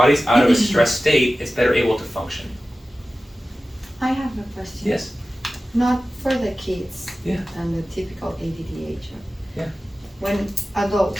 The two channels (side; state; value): both; normal; correlation 0.95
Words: out of a stress state, it's better able to function. I have a question. Yes. Not for the kids. Yeah. And the typical ADDH. Yeah. When